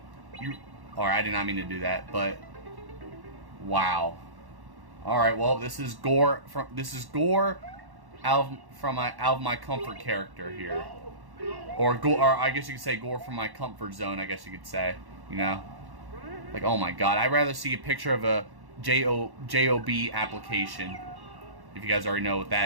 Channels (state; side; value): late; left; 1.1 ms